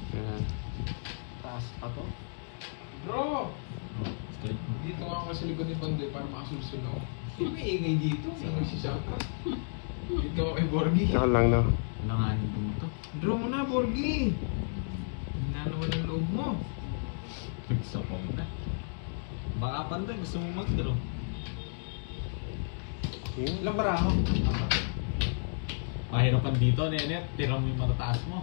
Yeah. Mataas pa to. Bro! Oh, straight mo. Dito nga ako sa likod ni Bandoy para makasulsul ako. Ano may ingay dito? May ingay si Saka. Dito ako kay Borgie. Saka lang na. Langanin din ito. Draw mo na, Borgie! Hina naman ang loob mo. Sa na. Baka Panday, gusto mo mag-draw. Ilang bara mo? Apat. Pahirapan dito, Nenet. Tira mo yung matataas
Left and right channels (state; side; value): silent; right; digital silence